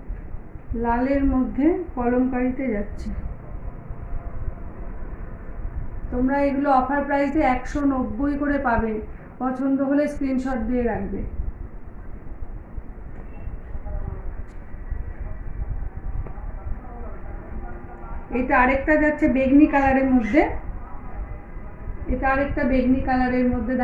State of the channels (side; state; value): both; identical; correlation 1.00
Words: লালের মধ্যে কলমকারিতে যাচ্ছে। তোমরা এগুলো অফার প্রাইসে 190 করে পাবে, পছন্দ হলে স্ক্রিনশট দিয়ে রাখবে। এটা আরেকটা যাচ্ছে বেগনি কালারের মধ্যে, এটা আরেকটা বেগনি কালারের মধ্যে,